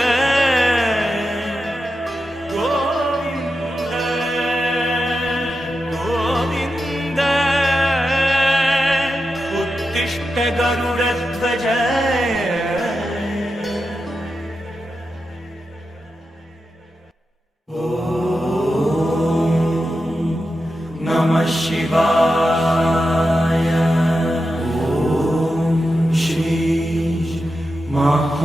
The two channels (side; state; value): both; normal; correlation 0.90